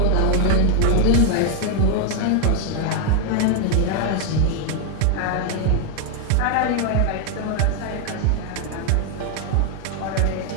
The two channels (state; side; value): different; both; correlation 0.00